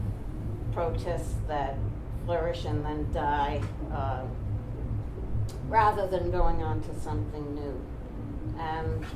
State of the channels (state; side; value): identical; both; correlation 1.00